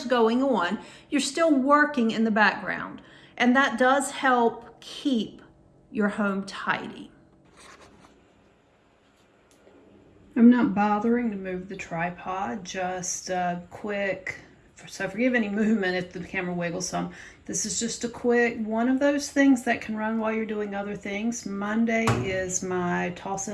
going on, you're still working in the background. And that does help keep your home tidy. I'm not bothering to move the tripod, just quick, so forgive any movement if the camera wiggles some. This is just a quick one of those things that can run while you're doing other things. Monday is my toss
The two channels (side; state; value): both; identical; correlation 1.00